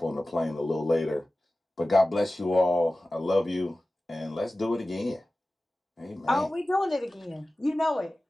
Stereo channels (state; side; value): normal; both; correlation 0.96